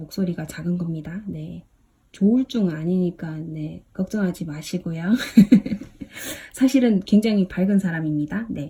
작은 겁니다. 네. 조울증 아니니까 네, 걱정하지 마시고요. 사실은 굉장히 밝은 사람입니다.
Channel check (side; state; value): both; identical; correlation 1.00